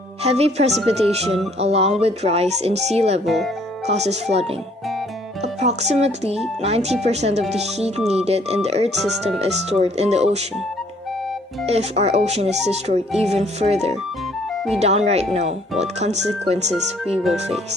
Heavy precipitation along with rise in sea level causes flooding. Approximately 90% of the heat needed in the Earth system is stored in the ocean. If our ocean is destroyed even further, we downright know what consequences we will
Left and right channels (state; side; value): normal; both; correlation 0.61